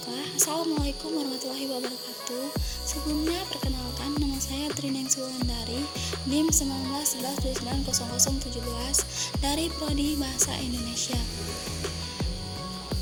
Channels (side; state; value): both; identical; correlation 1.00